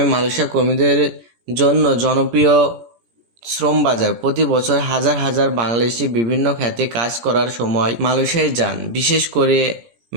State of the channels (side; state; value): left; late; 17 ms